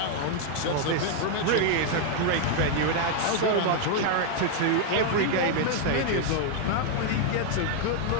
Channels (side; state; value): both; different; correlation 0.00